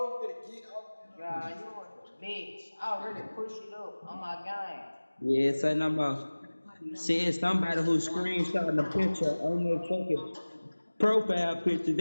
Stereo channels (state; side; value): inverted; both; correlation -1.00